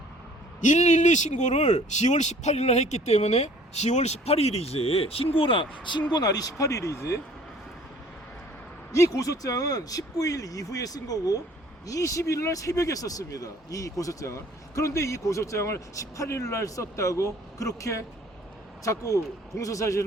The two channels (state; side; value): normal; both; correlation 0.53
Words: 112 신고를 10월 18일 날 했기 때문에 10월 18일이지 신고 날이 18일이지. 이 고소장은 19일 이후에 쓴 거고 20일 날 새벽에 썼습니다. 이 고소장을. 그런데 이 고소장을 18일 날 썼다고 그렇게 자꾸